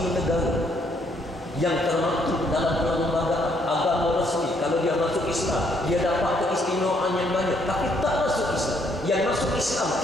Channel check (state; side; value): normal; both; correlation 0.70